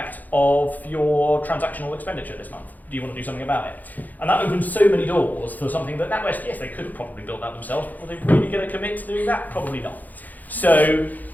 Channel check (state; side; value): late; right; 0.082 ms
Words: of your transactional expenditure this month. Do you want to do something about it? And that opens so many doors for something that NatWest, yes, they could have probably built that themselves, but are they really going to commit to doing that? Probably not. So,